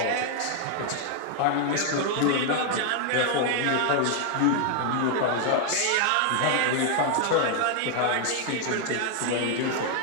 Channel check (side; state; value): both; different; correlation 0.00